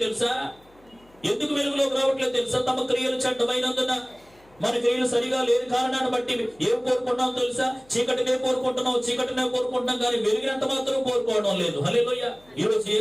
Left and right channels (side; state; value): left; noise; hum, 30 dB below the sound